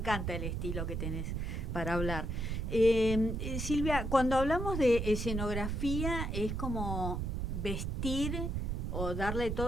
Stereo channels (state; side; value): noise; right; rumble, 2 dB below the sound